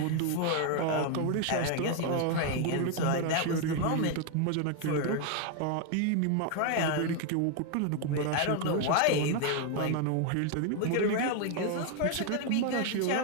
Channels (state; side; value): different; both; correlation 0.01